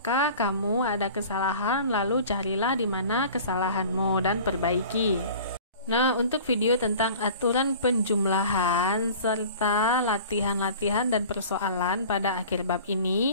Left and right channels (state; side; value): inverted; both; correlation -0.43